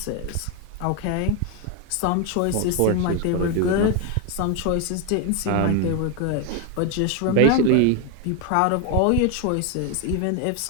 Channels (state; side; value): different; both; correlation 0.01